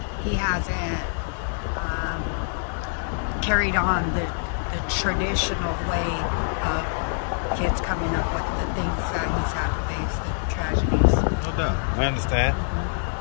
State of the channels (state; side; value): silent; right; 62 dB below the other